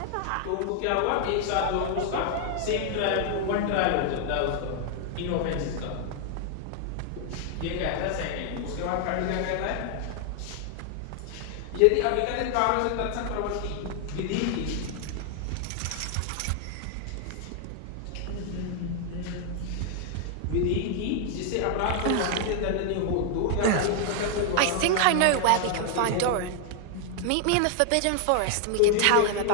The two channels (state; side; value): different; both; correlation 0.00